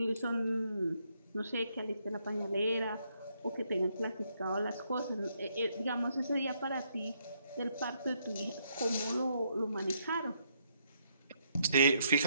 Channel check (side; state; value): both; inverted; correlation -0.73